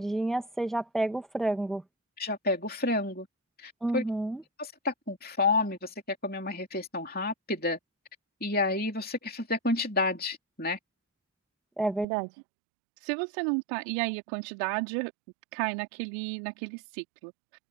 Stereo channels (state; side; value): drops out; left; at 12.1 s